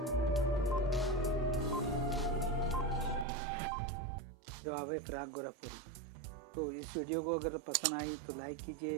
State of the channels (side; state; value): left; drops out; at 3.2 s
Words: जवाब है फराग गोरखपुरी। तो इस वीडियो को अगर पसंद आई तो लाइक